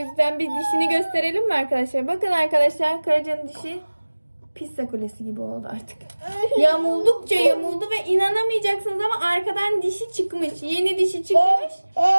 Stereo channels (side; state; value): both; inverted; correlation -1.00